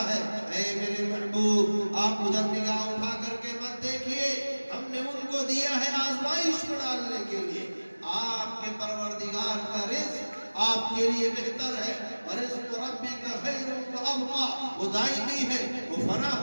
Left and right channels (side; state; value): both; inverted; correlation -1.00